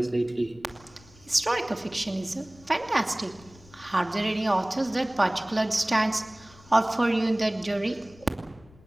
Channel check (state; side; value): noise; left; rumble, 25 dB below the sound